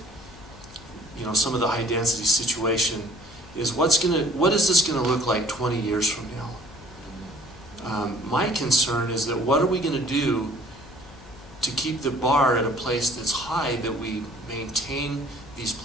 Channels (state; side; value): noise; left; hum, 21 dB below the sound